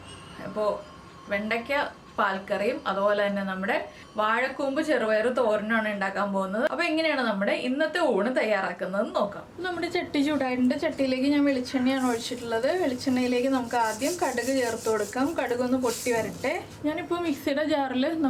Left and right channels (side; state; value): both; identical; correlation 1.00